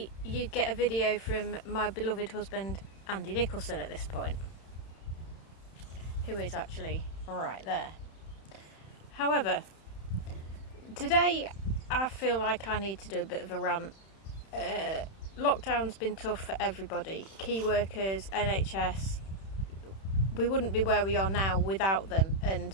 you'd get a video from my beloved husband, Andy Nicholson, at this point, who is actually right there. However, today I feel like I need to do a bit of a rant. Lockdown's been tough for everybody. Key workers, NHS. We wouldn't be where we are now without them,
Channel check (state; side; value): late; right; 31 ms